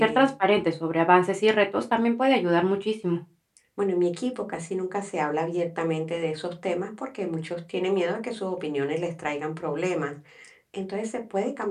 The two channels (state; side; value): identical; both; correlation 1.00